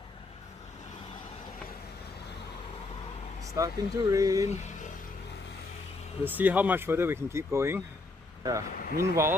Starting to rain. We'll see how much further we can keep going. Yeah.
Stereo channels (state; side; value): quieter; right; 3.2 dB